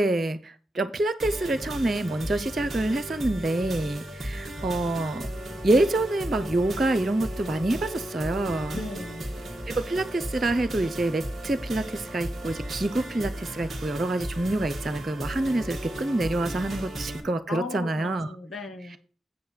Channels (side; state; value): both; normal; correlation 0.86